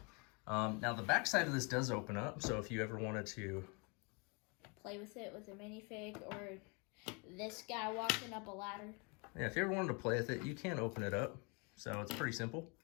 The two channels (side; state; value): right; quieter; 31.4 dB